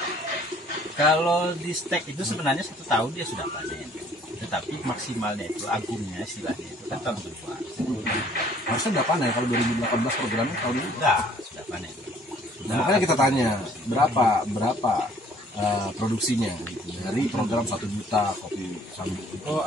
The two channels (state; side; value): normal; both; correlation 0.58